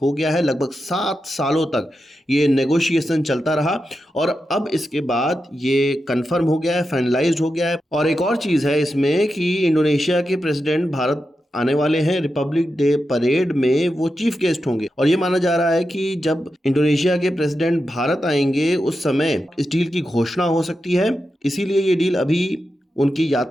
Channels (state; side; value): normal; both; correlation 0.89